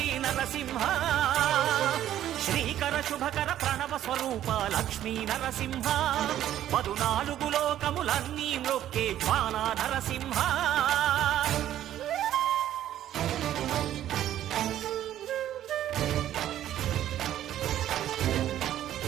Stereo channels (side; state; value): left; quieter; 12.0 dB